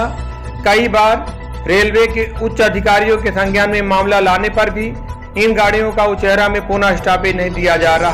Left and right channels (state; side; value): identical; both; correlation 1.00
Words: कई बार रेलवे के उच्च अधिकारियों के संज्ञान में मामला लाने पर भी इन गाड़ियों का उचेहरा में पुनः स्टॉपेज नहीं दिया जा